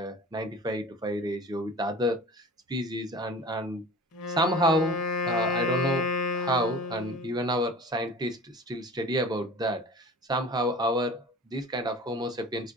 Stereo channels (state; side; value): normal; both; correlation 0.40